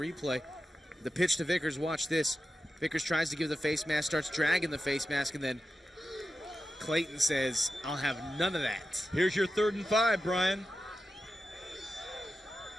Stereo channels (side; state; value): both; normal; correlation 0.91